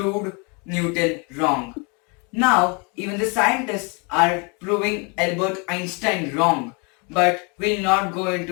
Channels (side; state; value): right; quieter; 32.3 dB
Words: Newton wrong. Now, even the scientists are proving Albert Einstein wrong, but we'll not go